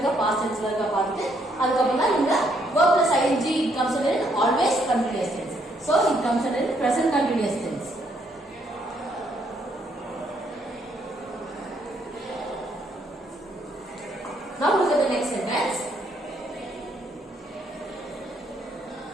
past tense ல இருக்க பார்த்துட்டு அதுக்கு அப்புறம் தான் இந்த verb plus ing it comes under always continuous tense. So it comes under present continuous tense. Now look at the next sentence.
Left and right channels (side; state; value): both; normal; correlation 0.71